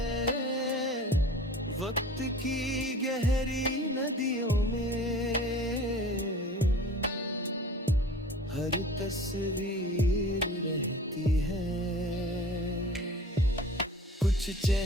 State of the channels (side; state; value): both; normal; correlation 0.42